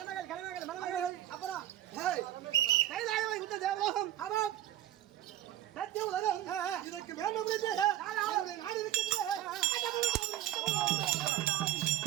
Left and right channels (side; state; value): left; quieter; 12.9 dB